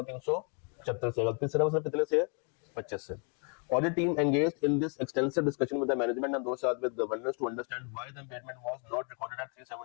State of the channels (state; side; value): quieter; right; 39.7 dB